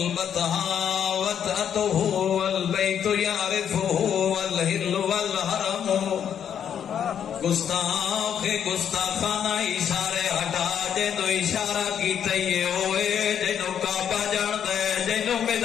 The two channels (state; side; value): quieter; right; 8.8 dB